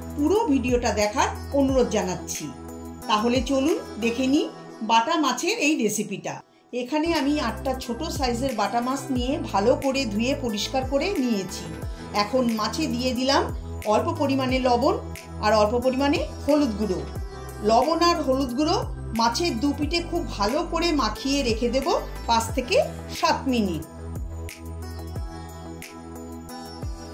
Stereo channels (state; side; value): identical; both; correlation 1.00